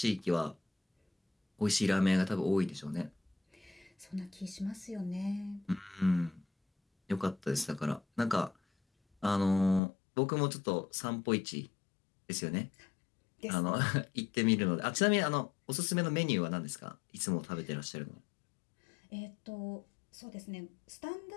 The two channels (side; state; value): right; drops out; at 9.8 s